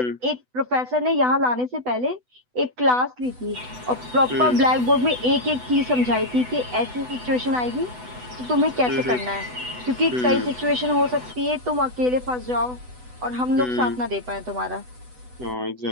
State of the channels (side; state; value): left; late; 8.0 ms